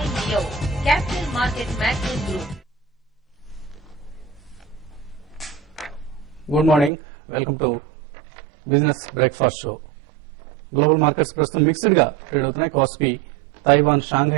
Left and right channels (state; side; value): drops out; left; at 6.9 s